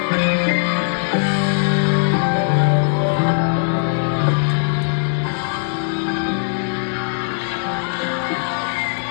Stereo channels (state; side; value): silent; right; digital silence